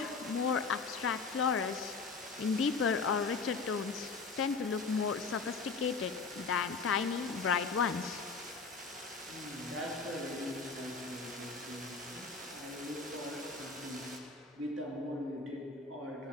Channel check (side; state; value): right; quieter; 4.6 dB